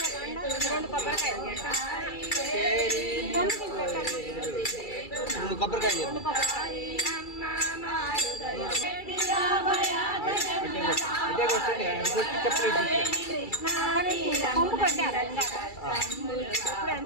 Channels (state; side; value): late; right; 2.3 ms